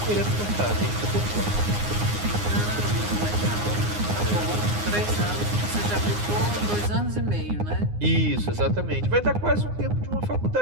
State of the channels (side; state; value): left; late; 9.7 ms